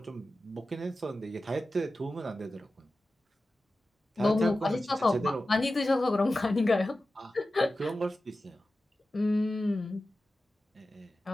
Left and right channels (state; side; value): normal; both; correlation 0.94